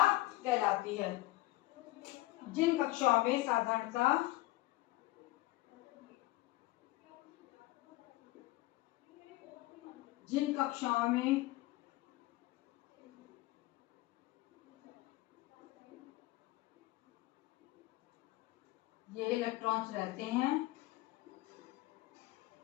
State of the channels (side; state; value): right; quieter; 18.6 dB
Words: कहलाती है। जिन कक्षाओं में साधारणतः ये इलेक्ट्रॉन्स रहते हैं